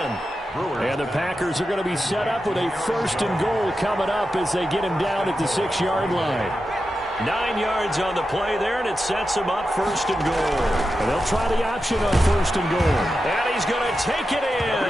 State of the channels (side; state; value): both; normal; correlation 0.90